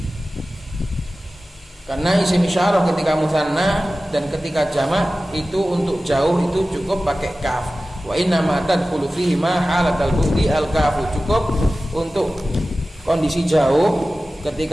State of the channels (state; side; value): normal; both; correlation 0.96